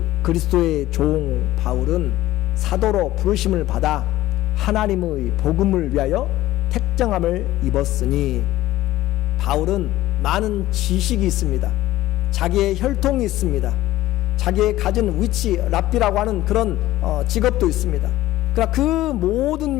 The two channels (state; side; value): quieter; right; 15.6 dB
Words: 그리스도의 종 바울은 사도로 부르심을 받아 하나님의 복음을 위하여 택정함을 입었으니, 바울은 많은 지식이 있습니다. 자기의 혈통이 있습니다. 자기의 가진 위치, 랍비라고 하는 그런 직업도 있습니다. 그러나 그